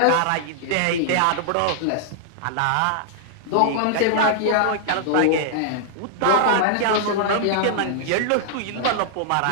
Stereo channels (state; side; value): different; both; correlation -0.01